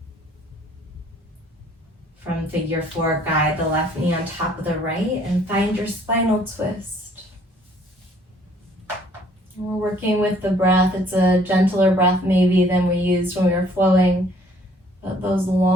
From figure 4, guide the left knee on top of the right and find your spinal twist. We're working with the breath. It's a gentler breath maybe than we used when we were flowing. But those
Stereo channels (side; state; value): both; normal; correlation 0.59